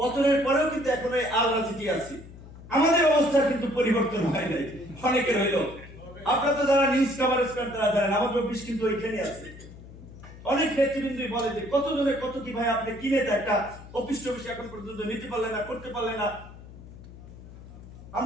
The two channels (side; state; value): left; noise; hum, 17 dB below the sound